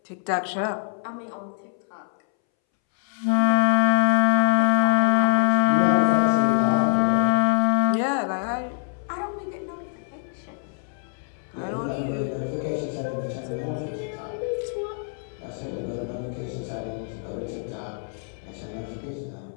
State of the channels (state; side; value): silent; right; 62 dB below the other